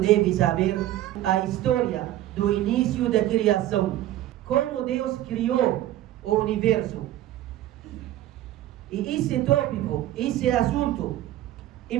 saber, a história do início da criação, como Deus criou o universo. E esse tópico, esse assunto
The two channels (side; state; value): left; quieter; 13.9 dB